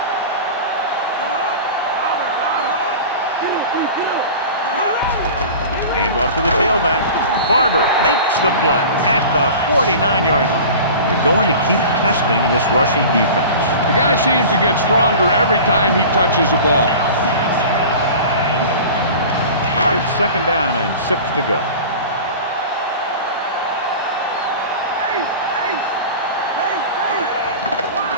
Hand off to the tailback. Barber makes the play at the 49-yard line. They're going to keep testing this rushing defense. The guy seems to get stronger every time he touches the ball. It's 2nd down and 6 to go.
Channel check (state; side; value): inverted; both; correlation -0.36